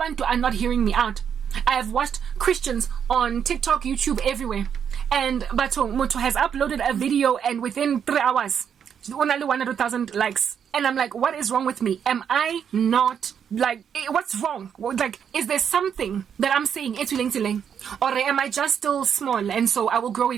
are not hearing me out. I have watched Christians on TikTok, YouTube, everywhere. And Bato Moto has uploaded a video, and within 3 hours, only 100,000 likes. And I'm like, what is wrong with me? Am I not, like, what's wrong? Like, is there something that I'm saying, or am I just still small, and so I will grow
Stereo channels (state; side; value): quieter; left; 7.9 dB